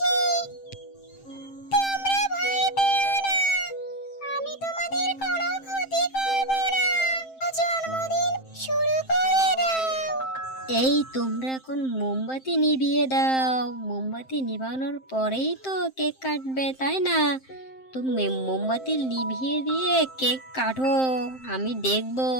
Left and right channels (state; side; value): late; right; 7.6 ms